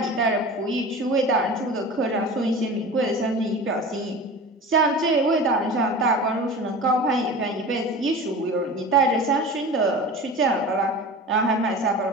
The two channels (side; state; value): both; normal; correlation 0.35